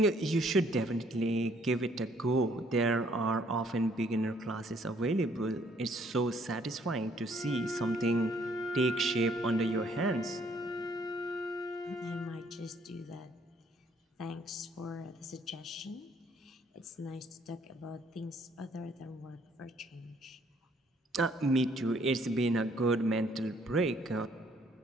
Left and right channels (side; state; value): both; normal; correlation 0.64